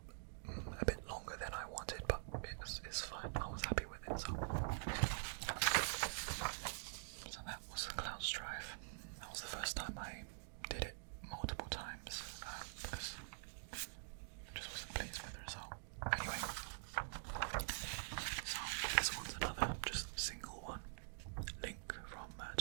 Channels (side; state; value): left; silent; digital silence